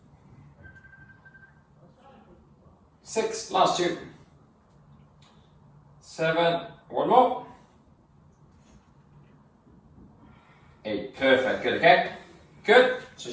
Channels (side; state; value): both; identical; correlation 1.00